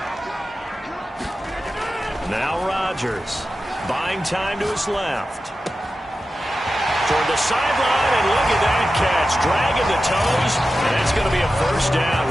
Now Rodgers buying time to his left. Toward the sideline, and look at that catch. Dragging the toes, and that's going to be a first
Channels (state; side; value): normal; both; correlation 0.92